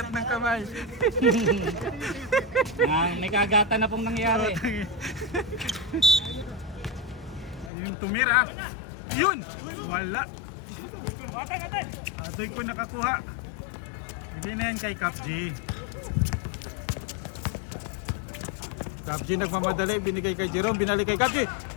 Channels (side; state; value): right; drops out; at 7.7 s